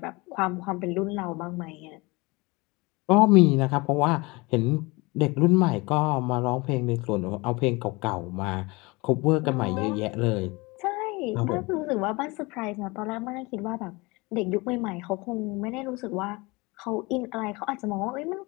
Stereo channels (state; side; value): quieter; right; 24.8 dB